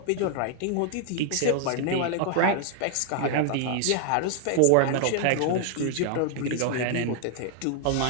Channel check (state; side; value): different; both; correlation 0.00